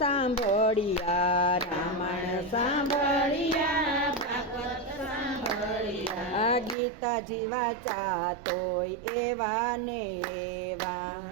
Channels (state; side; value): drops out; left; at 6.8 s